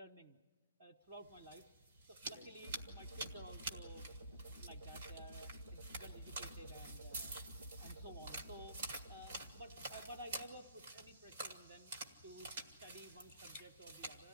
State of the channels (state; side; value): inverted; both; correlation -0.57